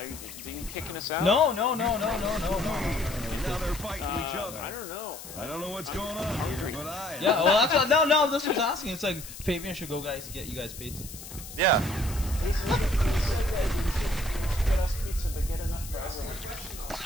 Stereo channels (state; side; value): noise; left; hiss, 13 dB below the sound